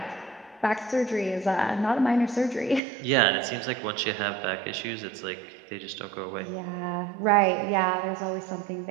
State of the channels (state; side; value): drops out; left; at 2.8 s